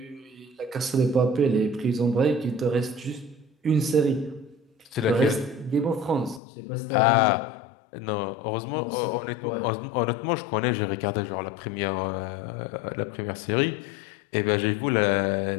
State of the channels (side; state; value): right; drops out; at 6.4 s